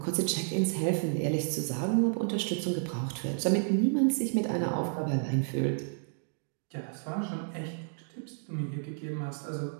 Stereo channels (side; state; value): left; silent; digital silence